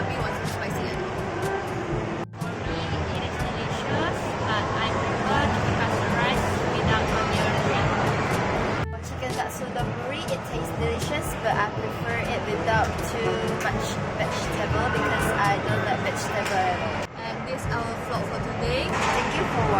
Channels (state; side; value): identical; both; correlation 1.00